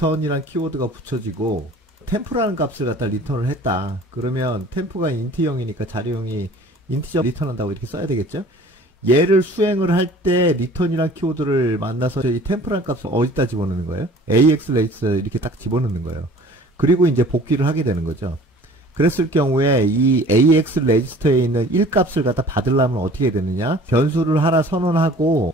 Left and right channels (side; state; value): both; normal; correlation 0.48